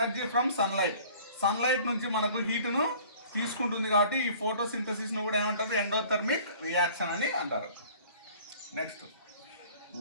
from sunlight నుంచి మనకు హీటును తీసుకుంటుంది, కాబట్టి ఈ ఫోటోసింథసిస్ను కూడా ఏమంటారు? ఎండోథర్మిక్ రియాక్షన్ అని అంటారు. Next,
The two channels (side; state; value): both; inverted; correlation -0.50